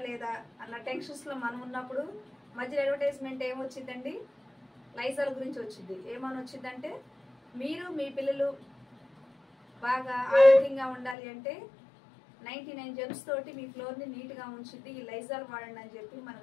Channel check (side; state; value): right; drops out; at 11.2 s